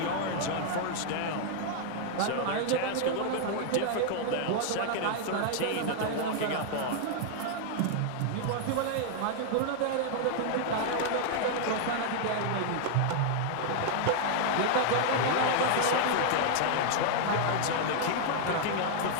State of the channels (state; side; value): different; both; correlation 0.00